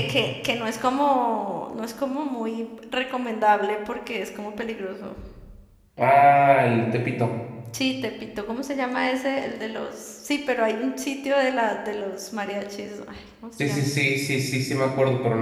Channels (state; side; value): identical; both; correlation 1.00